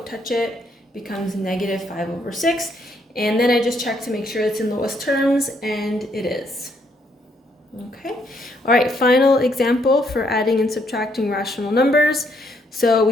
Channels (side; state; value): both; normal; correlation 0.72